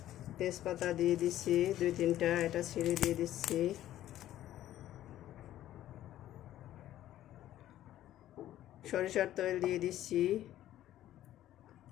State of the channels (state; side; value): quieter; right; 13.1 dB